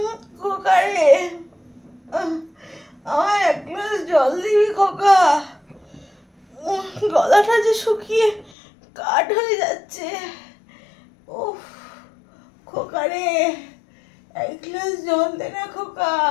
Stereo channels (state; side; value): drops out; right; at 8.6 s